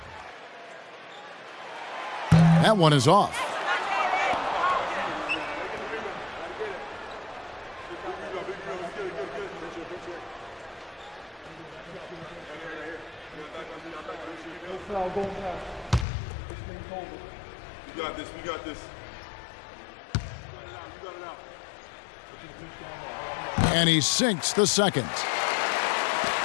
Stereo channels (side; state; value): right; drops out; at 16.1 s